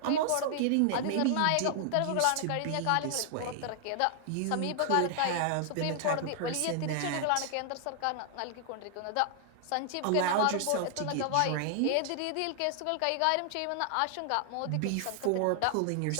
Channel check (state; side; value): different; both; correlation 0.00